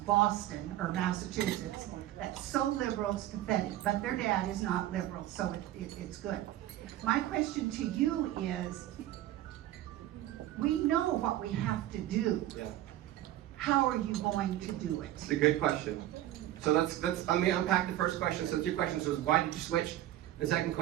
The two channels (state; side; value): quieter; left; 14.0 dB